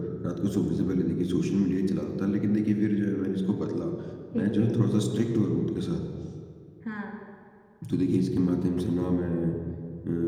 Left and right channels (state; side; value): identical; both; correlation 1.00